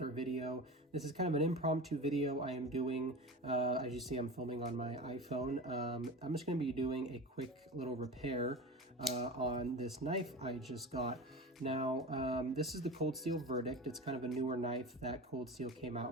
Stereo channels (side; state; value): both; normal; correlation 0.30